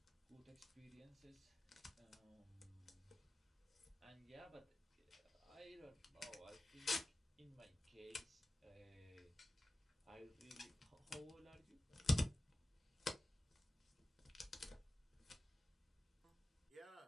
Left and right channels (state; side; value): normal; both; correlation 0.95